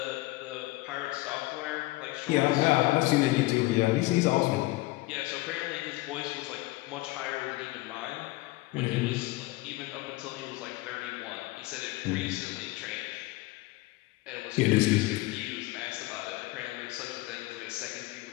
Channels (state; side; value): quieter; right; 20.3 dB